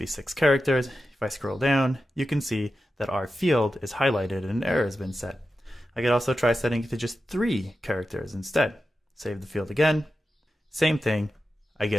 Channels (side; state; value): both; normal; correlation 0.91